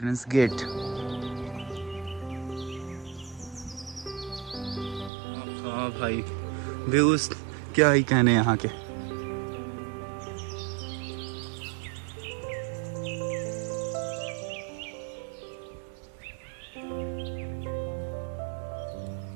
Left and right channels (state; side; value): drops out; left; at 5.1 s